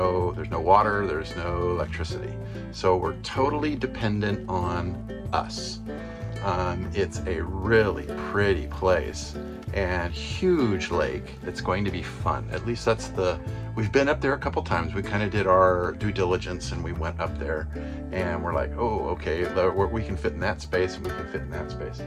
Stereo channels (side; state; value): both; identical; correlation 1.00